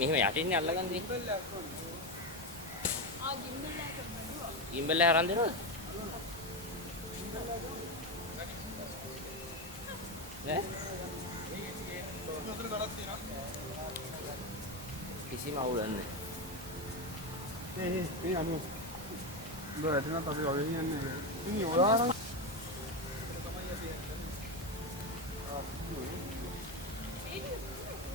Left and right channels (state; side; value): normal; both; correlation 0.13